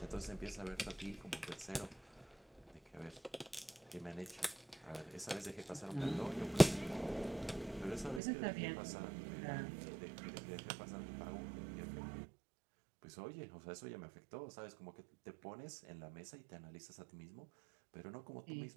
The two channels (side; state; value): left; drops out; at 8.2 s